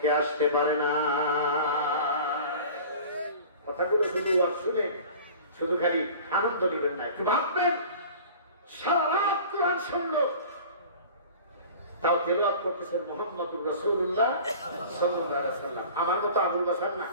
আসতে পারে না। কথাগুলো শুধু আর শুনে শুধু খালি আনন্দ নেবেন না, একটু ভাববেন। সারা রাত কোরআন শুনলো, তাও তেলাওয়াত করতেছেন মুহাম্মদুর রাসূলুল্লাহ সাল্লাল্লাহু আলাইহি ওয়াসাল্লাম। আমার মতো আবুল বাশার না,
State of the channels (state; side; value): inverted; both; correlation -0.41